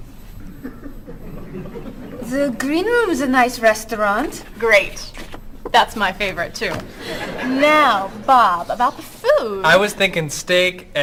The Green Room's a nice restaurant. Great. That's my favorite, too. Now, Bob, about the food. I was thinking steak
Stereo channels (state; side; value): identical; both; correlation 1.00